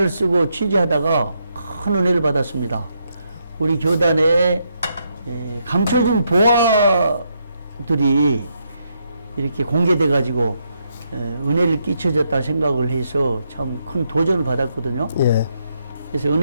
쓰고 취재하다가 큰 은혜를 받았습니다. 우리 교단에 감춰진 보화들이 이렇게 공개돼 가지고 은혜를 끼쳐졌다 생각을 해서 참 큰 도전을 받았거든요. 예, 그래서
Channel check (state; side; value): inverted; both; correlation -0.79